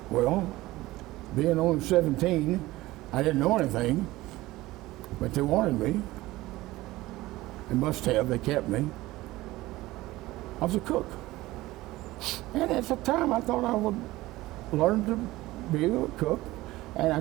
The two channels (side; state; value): left; quieter; 18.2 dB